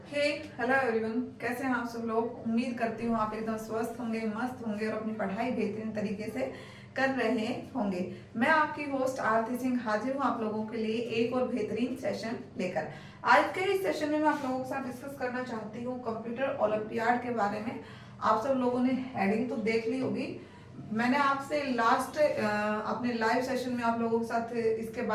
हे hello everyone, कैसे हैं आप सब लोग। उम्मीद करती हूँ आप एकदम स्वस्थ होंगे, मस्त होंगे और अपनी पढ़ाई बेहतरीन तरीके से कर रहे होंगे। मैं आपकी होस्ट आरती सिंह हाजिर हूँ आप लोगों के लिए एक और बेहतरीन सेशन लेकर। आज के इस सेशन में मैं आप लोगों के साथ डिस्कस करना चाहती हूँ कंप्यूटर ओलंपियाड के बारे में। आप सब लोगों ने हेडिंग तो देख ली होगी। मैंने आपसे लास्ट अपने लाइव सेशन में आप लोगों के साथ इसके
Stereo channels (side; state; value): both; identical; correlation 1.00